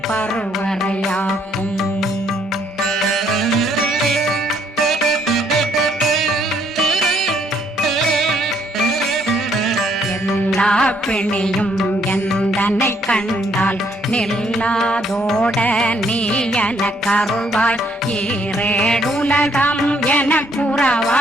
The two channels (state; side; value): normal; both; correlation 0.68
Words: பருவரையாக்கும் எல்லா பிணியும் எந்தனை கண்டால் நில்லாதோட நீ என கருள்வாய் ஈரேடுலகம் என